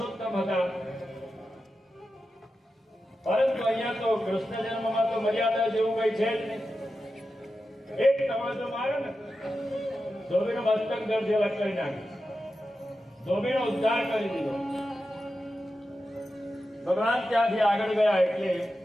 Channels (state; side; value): normal; both; correlation 0.91